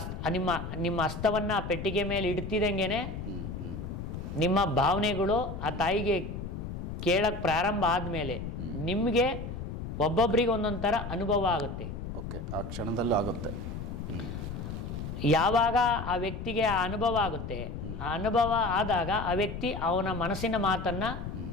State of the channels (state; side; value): noise; left; rumble, 7 dB below the sound